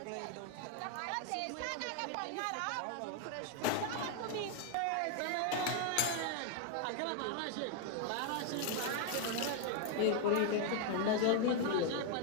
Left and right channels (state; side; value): different; both; correlation 0.00